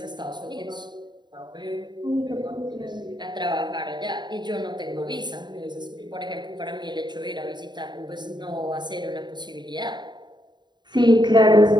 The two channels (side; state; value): left; late; 0.21 ms